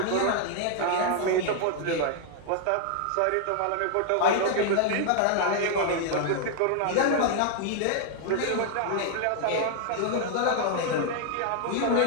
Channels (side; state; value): both; different; correlation 0.00